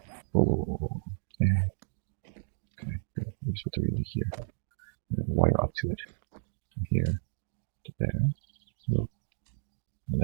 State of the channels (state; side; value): silent; left; digital silence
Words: Whoa. Okay, good. We just put the relay here. And wire up to it. From here to there. Whoa. And